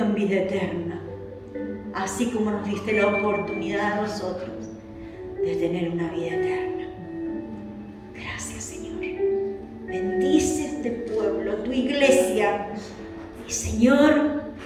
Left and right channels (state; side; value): identical; both; correlation 1.00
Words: vida eterna, así como nos diste la oportunidad a nosotros de tener una vida eterna. Gracias, Señor. Bendice este pueblo, tu iglesia. Y Señor,